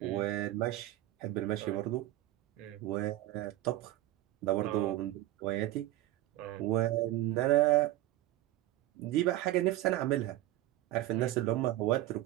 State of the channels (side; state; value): left; quieter; 15.4 dB